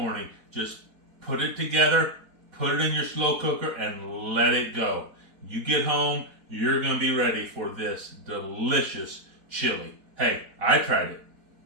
Just put it together, put it in your slow cooker, and let it go. You get home, you're going to be ready for this delicious chili. Hey, I tried it.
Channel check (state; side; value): late; left; 4.2 ms